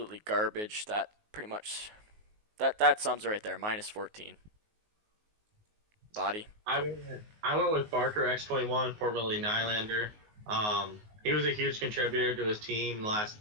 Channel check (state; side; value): late; left; 19 ms